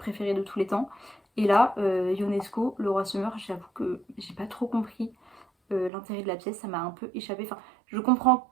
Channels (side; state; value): left; drops out; at 5.9 s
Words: de tous les temps. Et là, Ionesco, Le Roi se meurt, j'avoue que j'ai pas trop compris l'intérêt de la pièce, ça m'a un peu échappé. Enfin, je comprends,